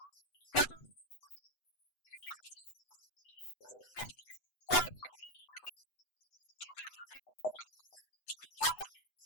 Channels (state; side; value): late; right; 8.0 ms